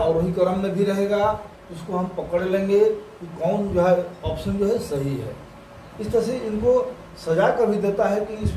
क्रम में भी रहेगा, उसको हम पकड़ लेंगे कि कौन जो है ऑप्शन जो है सही है। इस तरह से इनको सजा कर भी देता है कि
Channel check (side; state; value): both; identical; correlation 1.00